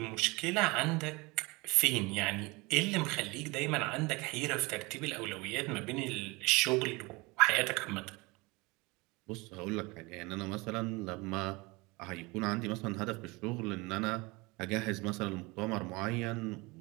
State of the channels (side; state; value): left; quieter; 24.9 dB